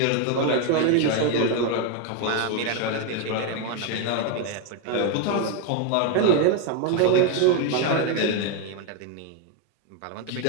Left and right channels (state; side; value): different; both; correlation 0.01